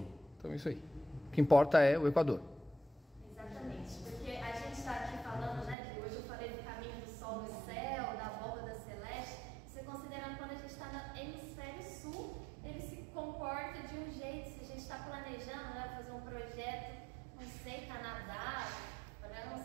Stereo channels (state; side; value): drops out; left; at 5.8 s